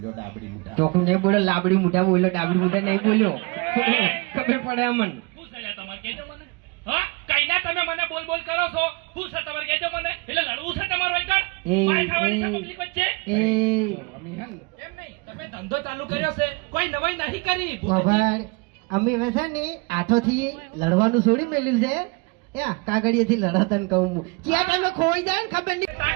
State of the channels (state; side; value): quieter; left; 28.8 dB